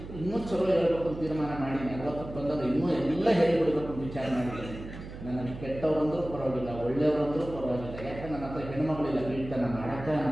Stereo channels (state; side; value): noise; right; hum, 12 dB below the sound